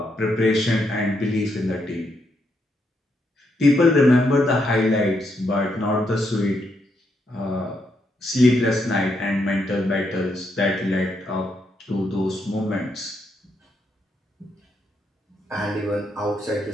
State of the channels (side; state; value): both; normal; correlation 0.78